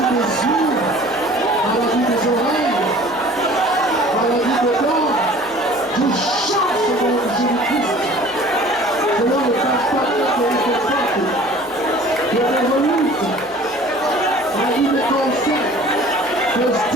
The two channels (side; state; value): both; normal; correlation 0.48